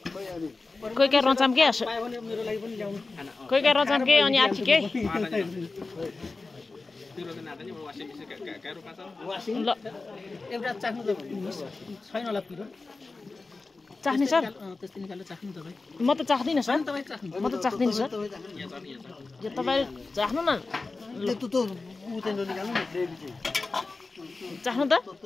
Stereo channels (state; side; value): quieter; right; 3.7 dB